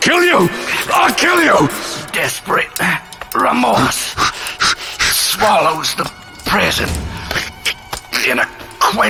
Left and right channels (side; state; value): both; identical; correlation 1.00